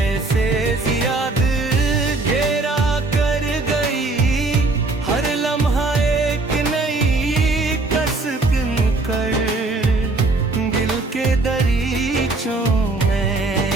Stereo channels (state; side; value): quieter; left; 3.3 dB